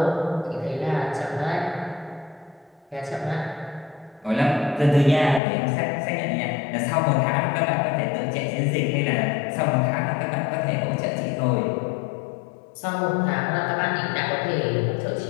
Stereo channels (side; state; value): right; drops out; at 5.4 s